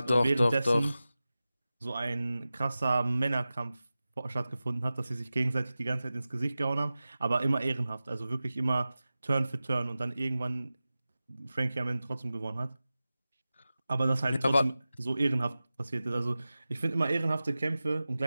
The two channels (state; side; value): inverted; both; correlation -0.95